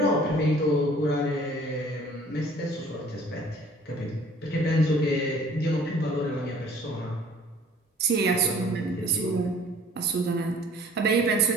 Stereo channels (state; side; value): normal; both; correlation 0.52